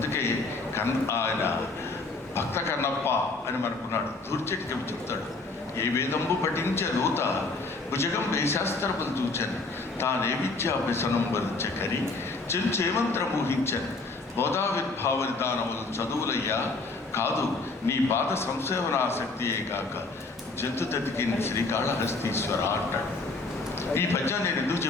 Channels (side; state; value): right; quieter; 3.6 dB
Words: ఆయన భక్త కన్నప్ప అని మనకున్నాడు. దూర్చెట్టు చెప్తాడు, ఏ వేదంబు పఠించే దూత భుజగం వేశాస్త్రములు చూచని, తానే విద్యాభ్యసనం వరించకరి చెంచేమంత్ర ఊహించని, బోధావిర్భావనిదానములు చదువులయ్యా కాదు, నీ పాద సంసేవనాసక్తియే కాక జంతు తతికిన శ్రీకాళహస్తీశ్వర అంటాడు. ఈ పద్యం నేను ఎందుకు